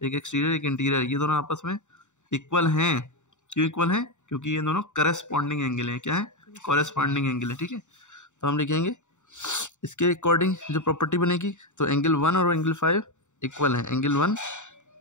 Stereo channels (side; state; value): right; late; 0.84 ms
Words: एक एक्सटीरियर एक इंटीरियर, ये दोनों आपस में इक्वल हैं। क्यों इक्वल हैं, क्योंकि ये दोनों करस्पॉन्डिंग एंगल हैं। क्या है, कॉरेस्पॉन्डिंग एंगल है, ठीक है। तो हम लिखेंगे इसके अकॉर्डिंग जो प्रॉपर्टी बनेगी, तो एंगल 1 और एंगल 5 इक्वल हैं, एंगल 1